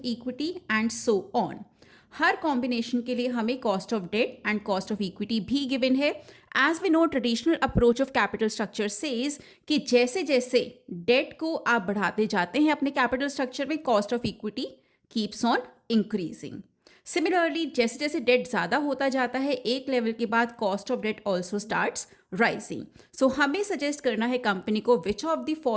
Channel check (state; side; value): identical; both; correlation 1.00